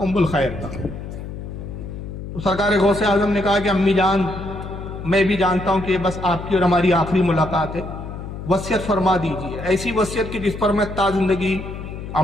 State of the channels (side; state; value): left; noise; hum, 9 dB below the sound